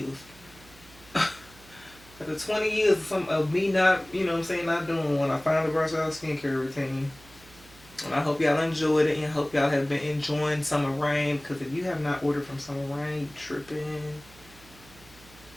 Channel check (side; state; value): right; noise; hum, 23 dB below the sound